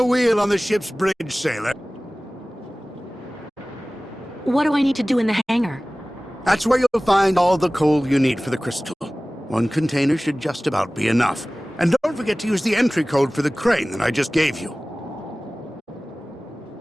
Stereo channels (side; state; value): both; normal; correlation 0.98